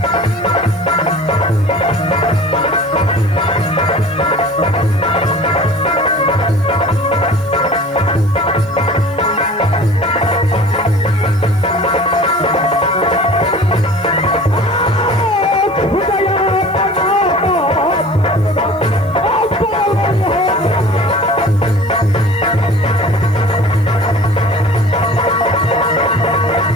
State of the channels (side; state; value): right; noise; hiss, 29 dB below the sound